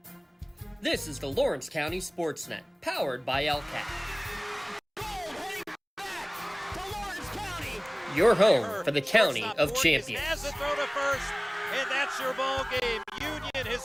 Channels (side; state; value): both; identical; correlation 1.00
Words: This is the Lawrence County SportsNet, powered by LCAP. Your home for the County of Champions. Has a throw to first, and that's your ball game. Union